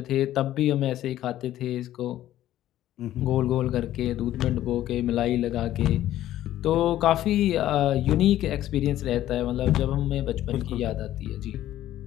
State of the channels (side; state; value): right; quieter; 13.3 dB